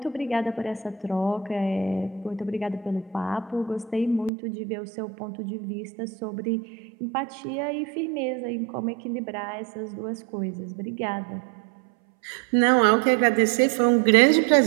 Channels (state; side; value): drops out; left; at 4.3 s